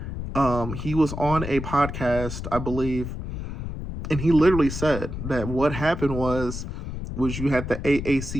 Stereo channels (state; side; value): noise; left; rumble, 6 dB below the sound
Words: he was on a podcast, I believe, and he literally said that what happened was you had the